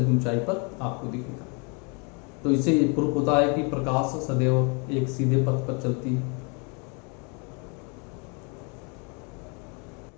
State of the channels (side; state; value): right; quieter; 33.8 dB